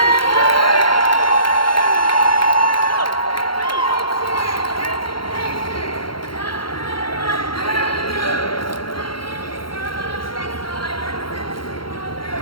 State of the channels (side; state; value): right; late; 0.73 ms